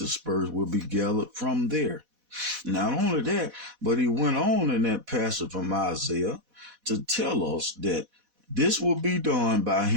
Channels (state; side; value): late; left; 4.1 ms